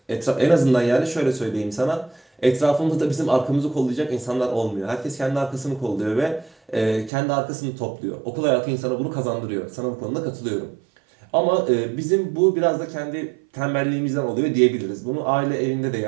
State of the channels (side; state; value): left; drops out; at 7.1 s